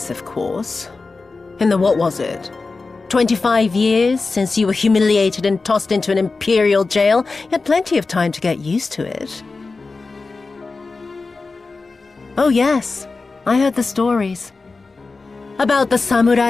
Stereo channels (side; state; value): right; quieter; 3.9 dB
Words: of course. In the what was it? 25 years since you were humiliated and tossed into an imperial jail? You had plenty of time to get used to it. Oh yes, I heard the stories. About the